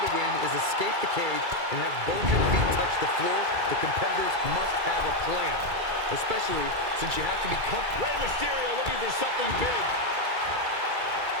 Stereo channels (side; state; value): left; late; 2.3 ms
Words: to win is escape the cage and have both your feet touch the floor, the competitors must have a plan. Especially since you have to be comfortable. Rey Mysterio looking for something big.